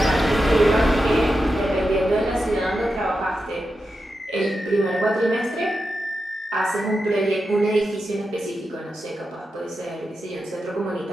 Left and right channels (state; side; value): normal; both; correlation 0.89